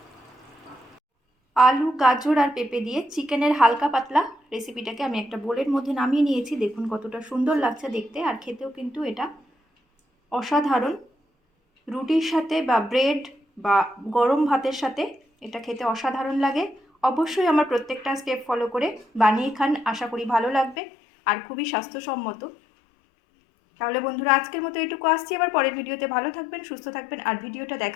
আলু, গাজর আর পেঁপে দিয়ে চিকেনের হালকা পাতলা রেসিপিটাকে আমি একটা বোলের মধ্যে নামিয়ে নিয়েছি। দেখুন কতটা সুন্দর লাগছে দেখতে, আর খেতেও কিন্তু এটা অসাধারণ। রুটির সাথে বা ব্রেড বা গরম ভাতের সাথে এটা খেতে অসাধারণ লাগে। অবশ্যই আমার প্রত্যেকটা স্টেপ ফলো করে বানিয়ে খান, আশা করি ভালো লাগবে আর খুবই স্বাস্থ্যসম্মত। তাহলে বন্ধুরা, আজকের মতো এটুকু আসছি, আবার পরের ভিডিওতে। ভালো থাকবেন, সুস্থ থাকবেন, আর ভিডিওটা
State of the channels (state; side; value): drops out; right; at 20.8 s